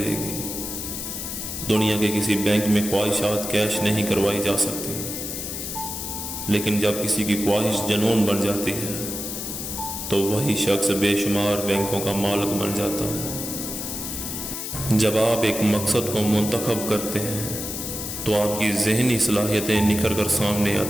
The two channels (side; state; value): left; noise; hiss, 6 dB below the sound